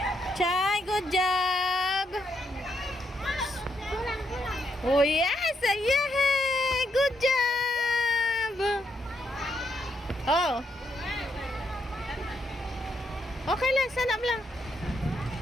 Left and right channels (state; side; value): normal; both; correlation 0.77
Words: Chay, good job. Oh, yes. Yeah. Good job. Oh. Okay lang, sanap lang.